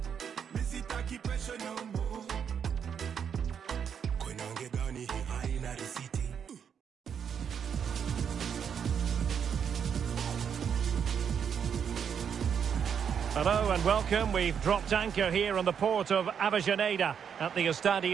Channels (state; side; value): quieter; left; 7.6 dB